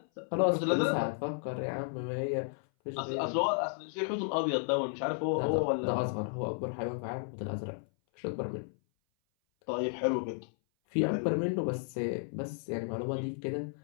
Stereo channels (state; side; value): silent; right; 56 dB below the other